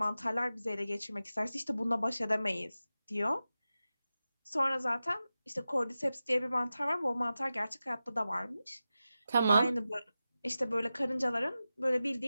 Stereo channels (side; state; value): both; inverted; correlation -0.94